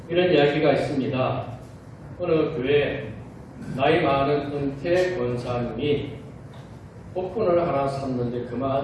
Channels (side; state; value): both; identical; correlation 1.00